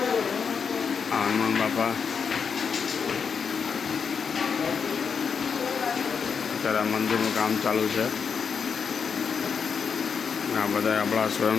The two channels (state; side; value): quieter; right; 6.2 dB